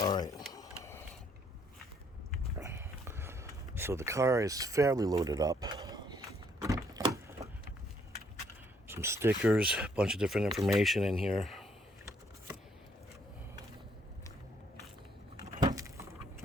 All right. So the car is fairly loaded up. Some stickers, a bunch of different information in here.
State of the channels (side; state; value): both; normal; correlation 0.68